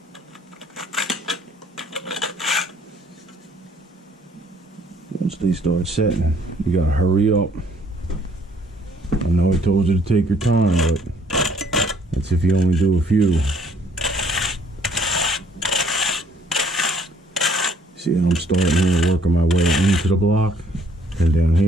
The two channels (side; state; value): both; normal; correlation 0.62